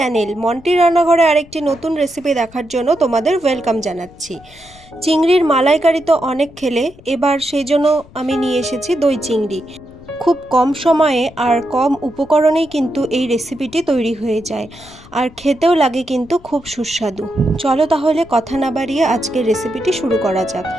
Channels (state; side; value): noise; left; rumble, 23 dB below the sound